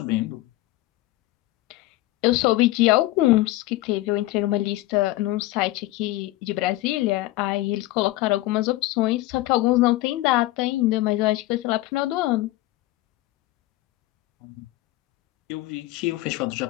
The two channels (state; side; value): quieter; right; 17.6 dB